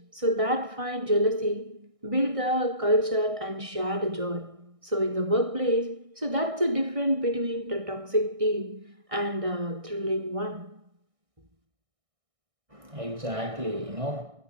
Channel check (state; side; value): late; left; 1.6 ms